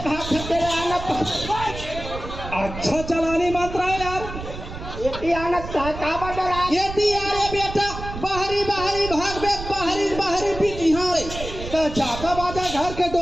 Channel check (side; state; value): right; noise; rumble, 9 dB below the sound